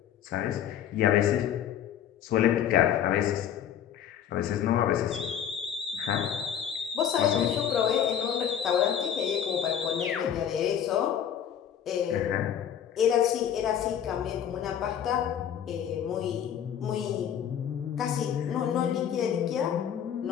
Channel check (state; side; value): quieter; right; 9.3 dB